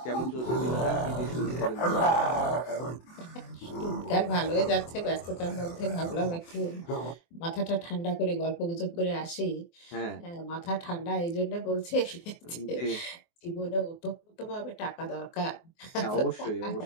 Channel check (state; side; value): late; right; 24 ms